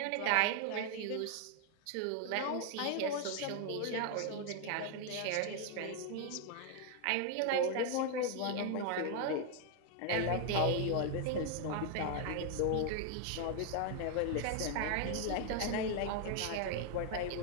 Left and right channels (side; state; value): both; different; correlation 0.00